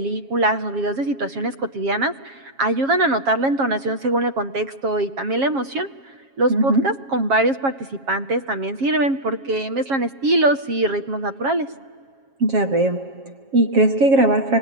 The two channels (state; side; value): late; left; 7.4 ms